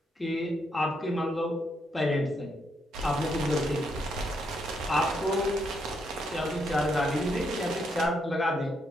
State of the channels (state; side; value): normal; both; correlation 0.77